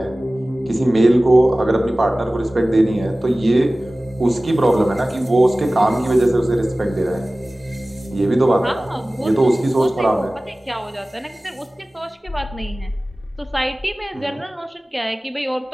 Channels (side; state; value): both; normal; correlation 0.97